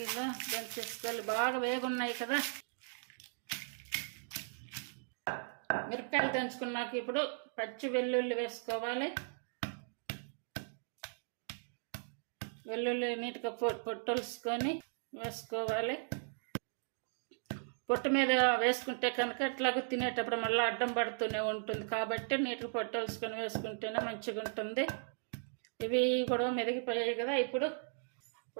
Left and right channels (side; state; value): left; silent; digital silence